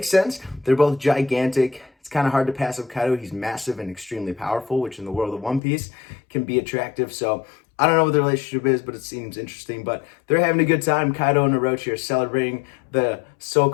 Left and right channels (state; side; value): drops out; right; at 5.6 s